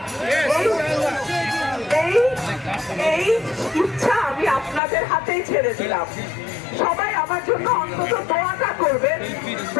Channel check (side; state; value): right; drops out; at 4.8 s